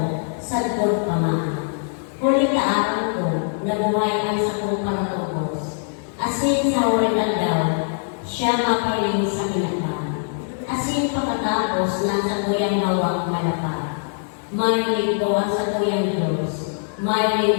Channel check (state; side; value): silent; right; digital silence